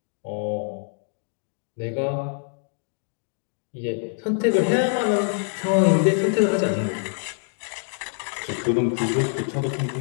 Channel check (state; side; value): silent; right; digital silence